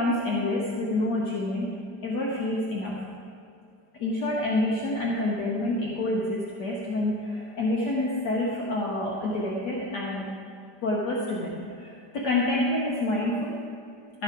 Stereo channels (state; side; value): late; right; 5.0 ms